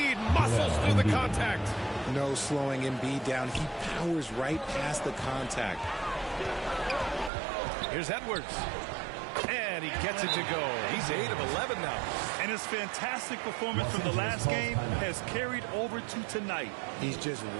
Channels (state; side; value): drops out; left; at 7.3 s